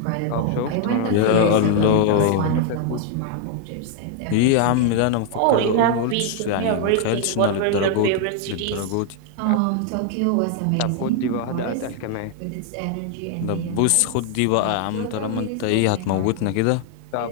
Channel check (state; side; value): different; both; correlation 0.00